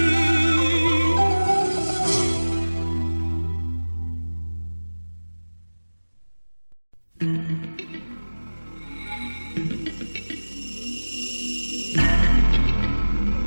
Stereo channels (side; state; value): both; inverted; correlation -1.00